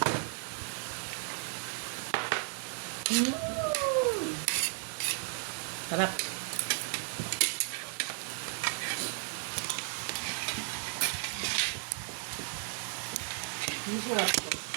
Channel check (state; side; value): silent; left; 55 dB below the other